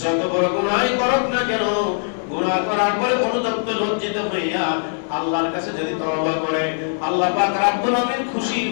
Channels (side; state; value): right; silent; 63 dB below the other